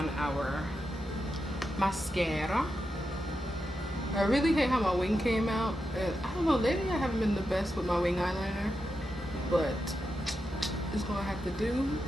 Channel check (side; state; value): both; normal; correlation 0.88